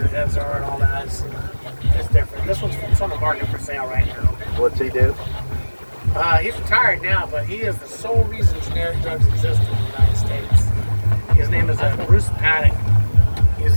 the heads are, and all that is it's different. This one's on the market for sale right now. What's he do? He's retired now, but he is the sole reason generic drugs exist in the United States. His name is Bruce Paddock.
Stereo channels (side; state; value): both; inverted; correlation -1.00